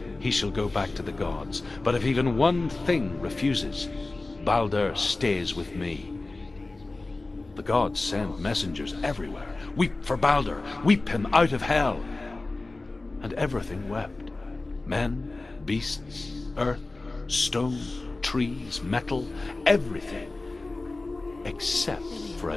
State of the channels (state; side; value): quieter; right; 3.2 dB